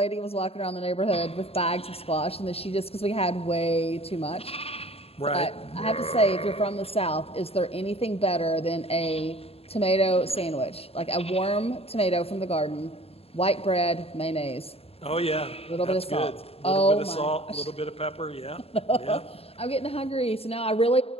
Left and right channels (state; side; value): late; right; 0.29 ms